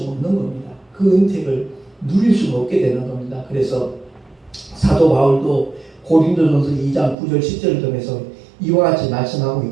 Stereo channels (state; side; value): drops out; left; at 7.2 s